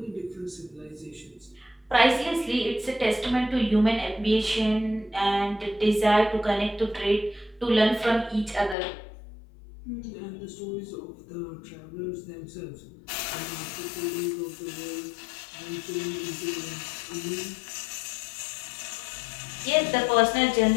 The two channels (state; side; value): drops out; right; at 8.8 s